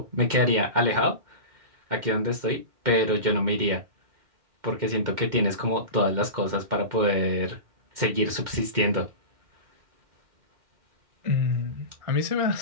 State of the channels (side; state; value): left; late; 2.1 ms